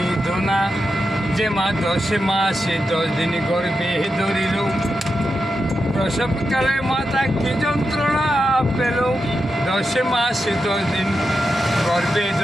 যে মা 10 মাসে 10 দিন গর্ভে ধরিল, প্রসবকালে মাতা কি যন্ত্রণা পেল। 10 মাসে 10 দিন গর্ভে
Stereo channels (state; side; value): normal; both; correlation 0.88